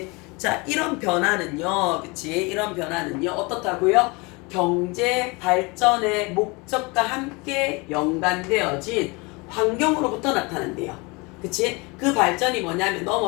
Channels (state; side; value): quieter; right; 27.0 dB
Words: 자, 이런 변화는요. 그치? 이런 변화는요. 어떻다고요? 경제 발전의 목적과 함께 연관되어진 환경으로부터 나타난대요. 그치? 그 발전이 뭐냐면